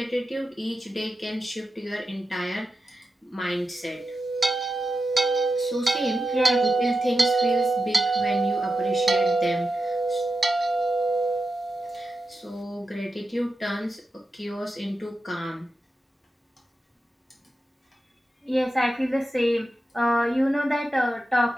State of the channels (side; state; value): both; normal; correlation 0.90